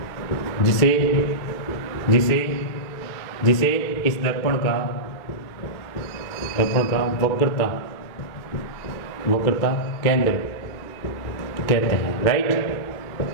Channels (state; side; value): late; right; 2.3 ms